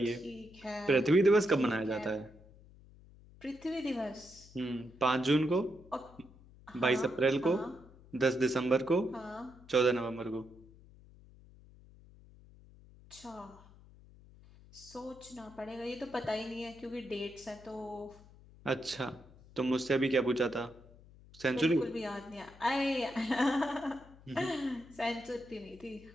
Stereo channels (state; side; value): noise; left; hum, 22 dB below the sound